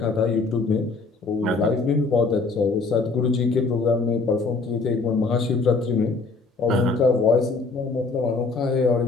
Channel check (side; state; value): right; quieter; 4.0 dB